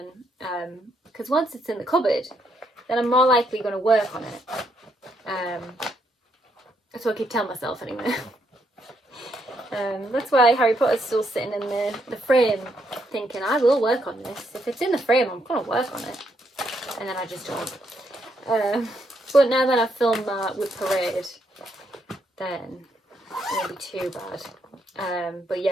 Because once it's in the cupboard, then I'm more likely going to work on it. That's what I keep telling myself anyway. That's why Harry Potter's still sitting in the frame, thinking I will work on this. If it's in the frame, I'm going to work on it. And then I just don't. But now that I've filmed that with Parade, then won't be too bad. But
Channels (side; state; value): both; normal; correlation 0.76